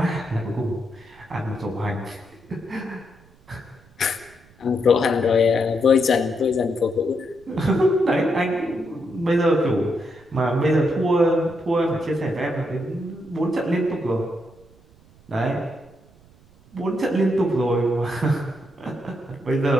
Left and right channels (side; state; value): right; noise; rumble, 28 dB below the sound